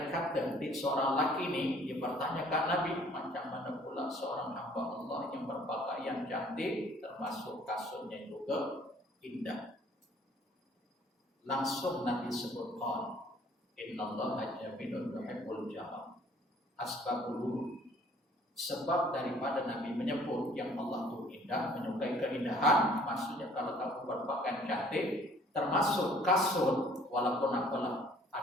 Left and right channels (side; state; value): both; normal; correlation 0.57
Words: kata seorang laki ini dia bertanyakan Nabi, macam mana pula seorang hamba Allah yang berpakaian cantik termasuk kasutnya juga indah. Langsung Nabi sebutkan, innallaha jamilun yuhibbul jamal. Asbabul, sebab daripada Nabi menyebut yang Allah itu indah, menyukai keindahan, maksudnya kalau kamu berpakaian cantik termasuk kasut, walaupun apalah